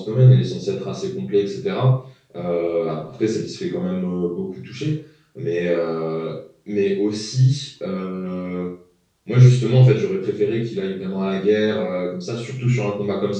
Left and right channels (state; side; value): identical; both; correlation 1.00